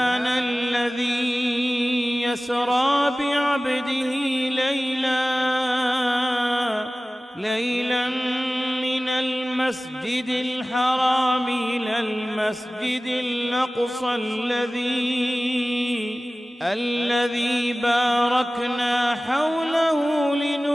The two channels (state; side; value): normal; both; correlation 0.97